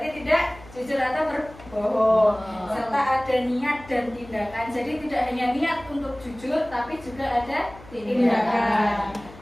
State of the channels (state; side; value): noise; left; hum, 20 dB below the sound